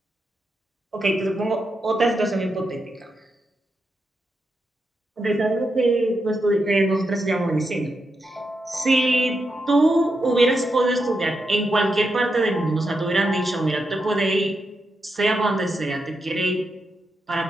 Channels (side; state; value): both; normal; correlation 0.85